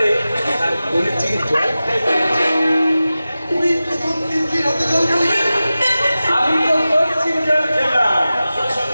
আর বলেছি জল খাইবে তুই প্রথম তিতলির হাতে জল খাবি আমি তো করছি জল খেলাম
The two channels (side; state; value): both; inverted; correlation -0.95